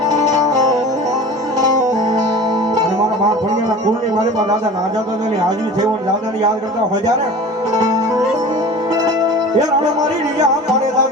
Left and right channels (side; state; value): both; normal; correlation 0.38